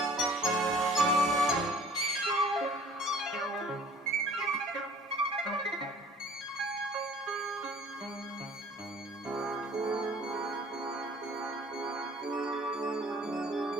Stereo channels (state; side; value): normal; both; correlation 0.50